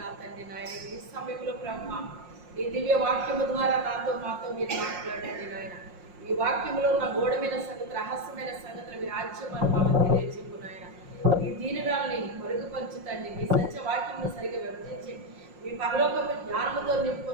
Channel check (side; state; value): left; late; 5.6 ms